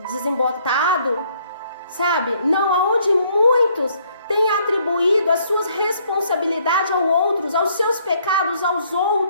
desembotado, sabe? Não, aonde muitos têm atribuído as suas responsabilidades aos seus pecados aos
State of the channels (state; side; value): inverted; both; correlation -0.66